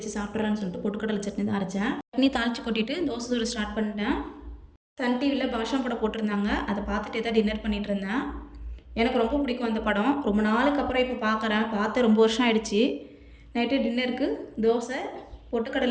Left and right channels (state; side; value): identical; both; correlation 1.00